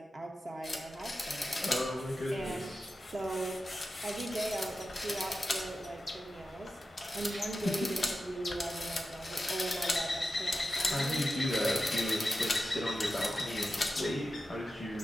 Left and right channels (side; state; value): both; normal; correlation 0.92